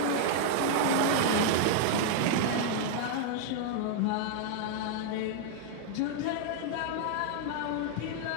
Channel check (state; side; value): different; both; correlation -0.01